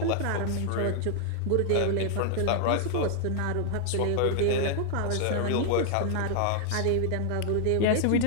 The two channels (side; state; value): both; different; correlation 0.00